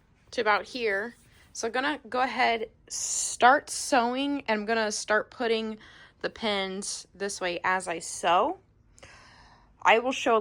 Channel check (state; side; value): identical; both; correlation 1.00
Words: to about here. So I'm gonna go ahead, start sewing, and I'm gonna start putting the pins this way as I sew. I will show a